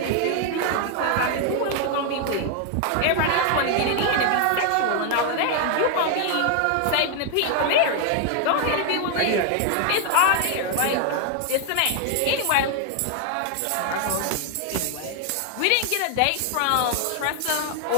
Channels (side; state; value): both; different; correlation 0.00